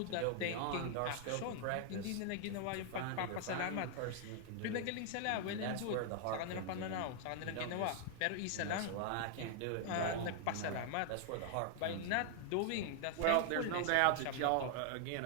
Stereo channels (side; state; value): both; different; correlation 0.00